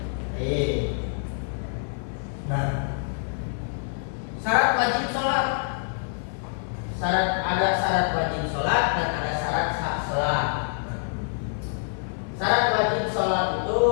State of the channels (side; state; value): right; silent; 56 dB below the other